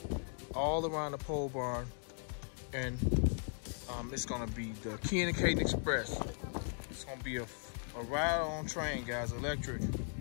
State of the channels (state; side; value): silent; right; 53 dB below the other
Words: all around the pole barn, and it's going to be the Kian Kaiden Express. It's going to be a ride-on train, guys, electric.